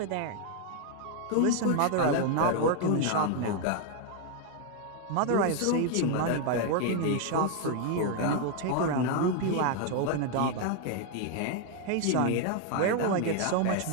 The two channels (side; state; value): both; different; correlation 0.01